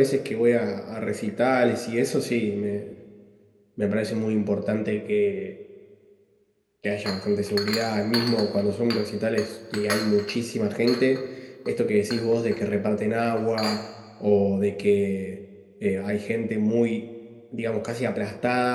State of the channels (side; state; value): both; identical; correlation 1.00